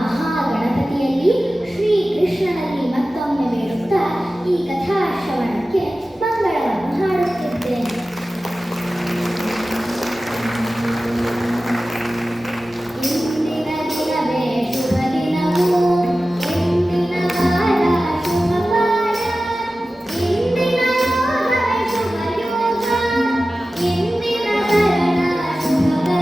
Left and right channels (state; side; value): normal; both; correlation 0.95